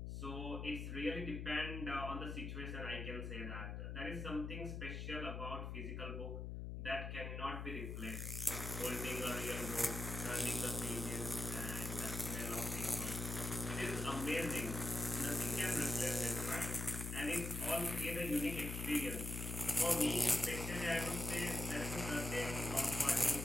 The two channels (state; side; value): noise; left; hum, 5 dB below the sound